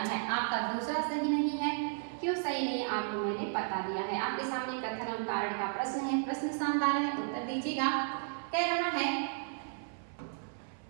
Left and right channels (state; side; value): silent; left; 55 dB below the other